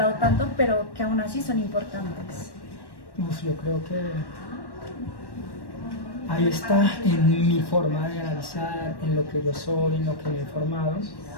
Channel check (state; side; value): late; right; 1.1 ms